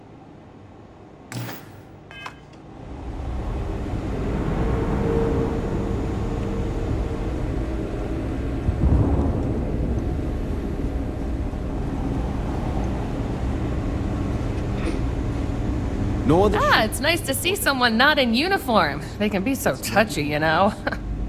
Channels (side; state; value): both; identical; correlation 1.00